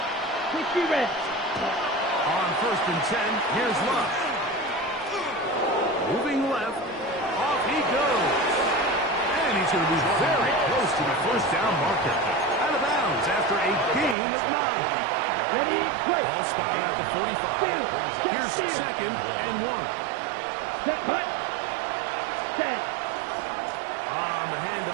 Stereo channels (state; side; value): drops out; left; at 14.2 s